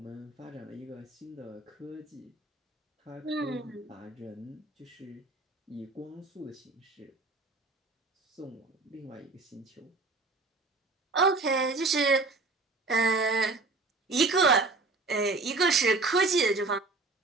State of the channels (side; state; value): left; quieter; 3.5 dB